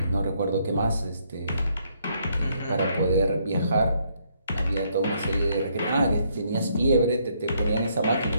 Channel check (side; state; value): both; inverted; correlation -0.71